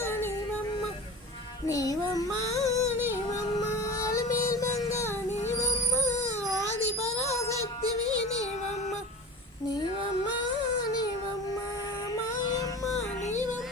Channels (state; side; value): normal; both; correlation 0.34